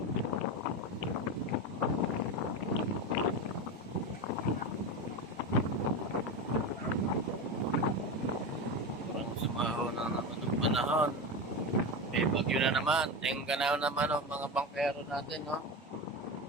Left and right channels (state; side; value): normal; both; correlation 0.20